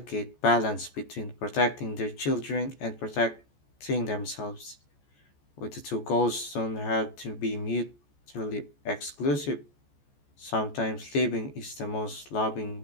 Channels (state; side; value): late; right; 14 ms